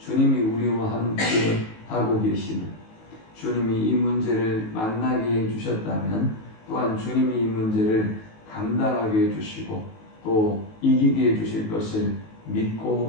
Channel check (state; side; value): late; right; 19 ms